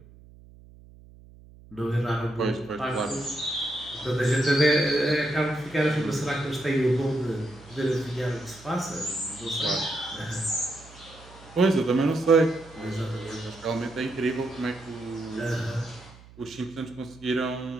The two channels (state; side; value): noise; right; hum, 22 dB below the sound